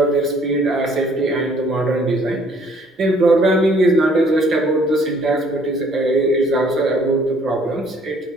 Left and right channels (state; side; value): normal; both; correlation 0.60